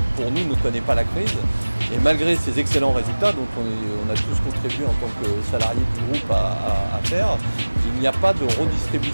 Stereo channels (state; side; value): inverted; both; correlation -1.00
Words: pour nous, ne connaît pas la crise. Et malgré ces excellents résultats, dont on a tous contribué en tant que salariés du groupe à faire, il n'y a pas de